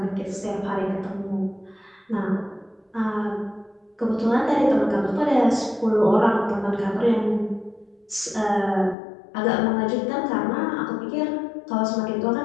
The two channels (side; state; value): right; drops out; at 9.0 s